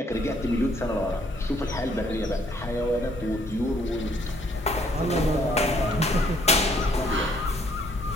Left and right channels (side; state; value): both; normal; correlation 0.65